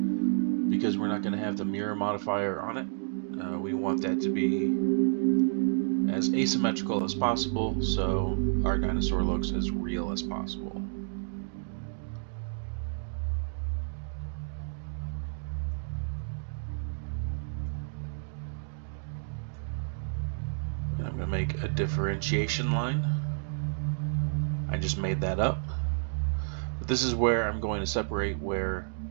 because we're not going to have the mirror modifier on it. We want that to be as asymmetrical as possible, so our dinosaur looks as real as possible. And I'm going to make a differentiation line. I just made that up. But this is where I'm going to separate where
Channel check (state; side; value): silent; left; digital silence